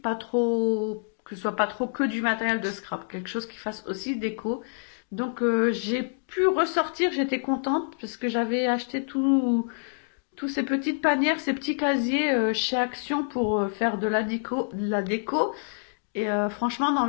trop que ce soit pas trop que du matériel de scrap, quelque chose qui fasse aussi déco. Donc j'ai pu ressortir, j'étais contente parce que j'avais acheté tous ces petites panières, ces petits casiers chez Action pour faire de la déco. Et franchement, dans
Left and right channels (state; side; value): silent; right; digital silence